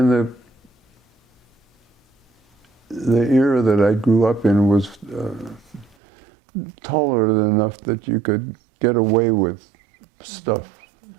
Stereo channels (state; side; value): drops out; left; at 6.0 s